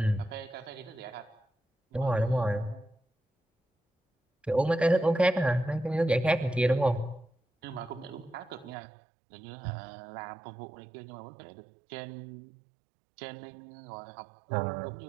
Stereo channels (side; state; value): left; drops out; at 8.8 s